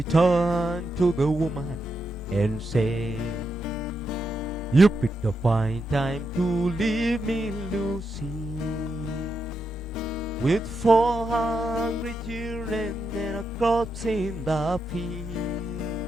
turned to the woman and said, you picked a fine time to leave me, Lucy, with 4 hungry children and a corpse in the field.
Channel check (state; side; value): normal; both; correlation 0.84